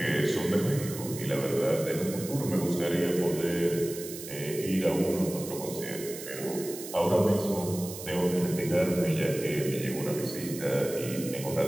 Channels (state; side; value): noise; right; hiss, 11 dB below the sound